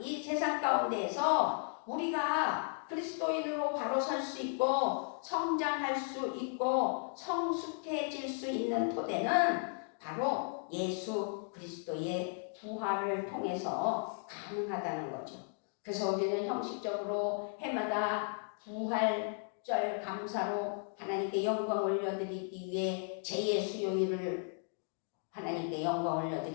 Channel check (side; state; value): right; silent; 54 dB below the other